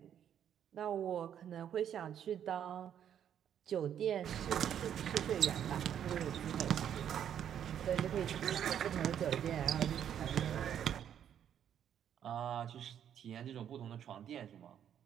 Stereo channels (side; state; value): left; quieter; 9.4 dB